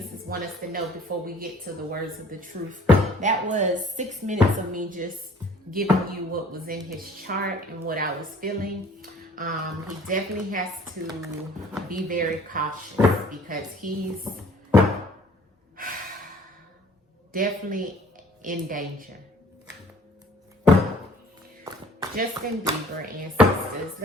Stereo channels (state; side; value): normal; both; correlation 0.54